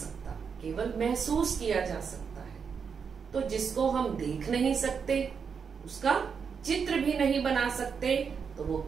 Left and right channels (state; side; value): quieter; left; 6.3 dB